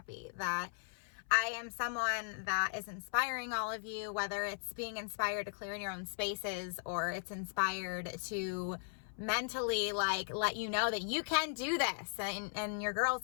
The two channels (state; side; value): silent; right; 53 dB below the other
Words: that I am someone that is inspiring all of you, whether it's being inspired to clear in your own spaces or it's inspired to mentally let you know that you can do this and your